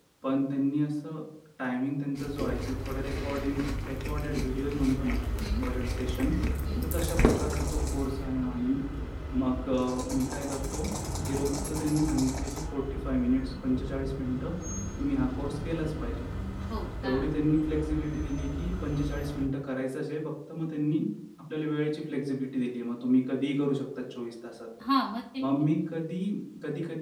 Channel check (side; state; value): both; identical; correlation 1.00